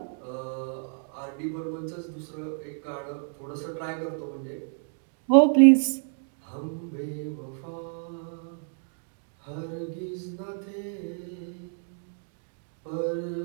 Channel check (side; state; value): left; silent; digital silence